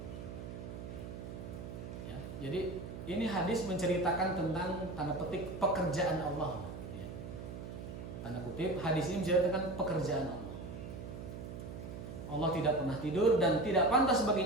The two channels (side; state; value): right; noise; hum, 9 dB below the sound